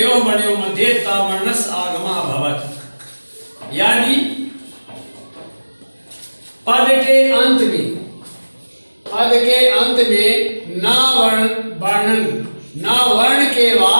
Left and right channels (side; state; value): both; inverted; correlation -1.00